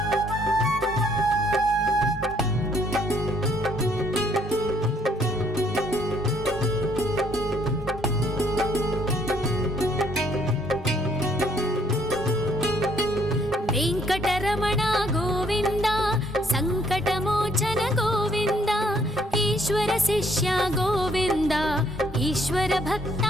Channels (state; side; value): normal; both; correlation 0.66